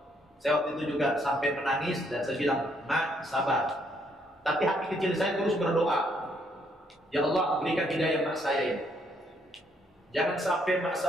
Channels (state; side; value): normal; both; correlation 0.71